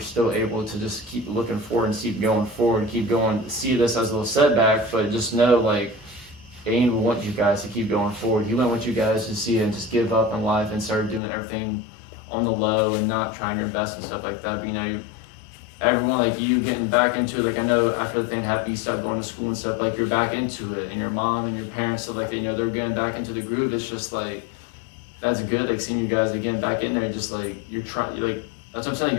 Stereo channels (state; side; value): drops out; right; at 11.2 s